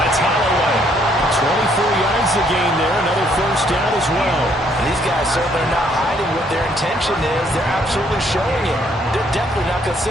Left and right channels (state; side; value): normal; both; correlation 0.67